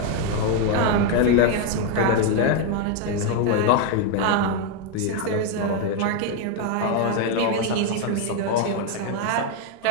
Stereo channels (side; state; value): both; different; correlation 0.01